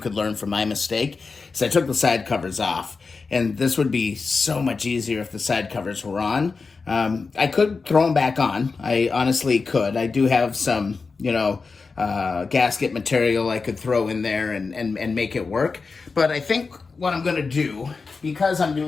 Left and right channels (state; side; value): quieter; right; 4.5 dB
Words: learn from my mistake, is I took the side covers off. And this would be so much easier if the side covers were on. I could throw them back on. I honestly could. I do have some, gasket material I could throw in there and make it work. But I think what I'm going to do, because I'm